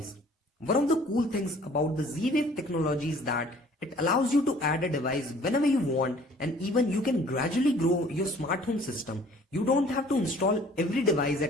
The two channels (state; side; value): normal; both; correlation 0.54